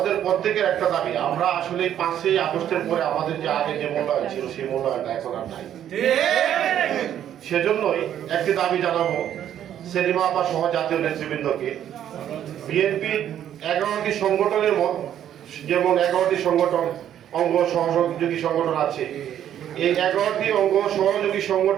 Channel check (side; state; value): left; quieter; 10.5 dB